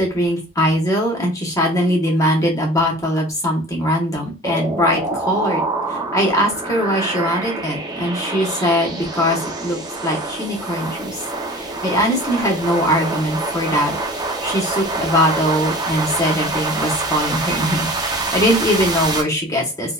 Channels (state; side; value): normal; both; correlation 0.42